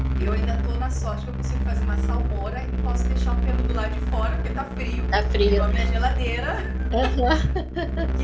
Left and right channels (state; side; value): identical; both; correlation 1.00